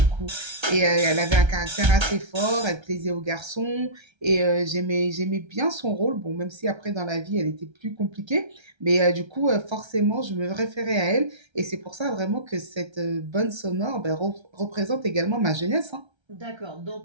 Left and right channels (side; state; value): left; late; 1.3 ms